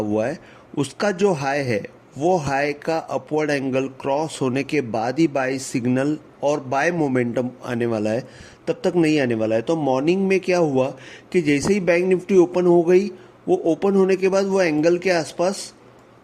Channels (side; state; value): both; identical; correlation 1.00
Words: है, उसका जो हाई है वो हाई का अपवर्ड एंगल क्रॉस होने के बाद ही बाय सिग्नल और बाय मोमेंटम आने वाला है, तब तक नहीं आने वाला है। तो मॉर्निंग में क्या हुआ कि जैसे ही बैंक निफ्टी ओपन हो गई, वो ओपन होने के बाद वो एंगल के आसपास